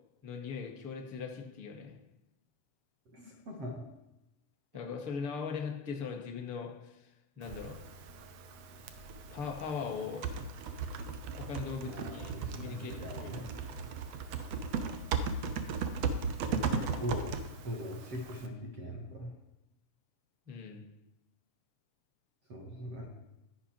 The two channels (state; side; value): late; left; 8.1 ms